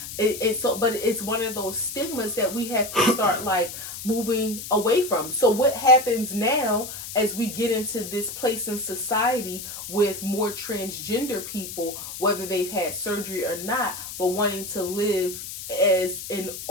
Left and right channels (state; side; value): noise; left; hiss, 9 dB below the sound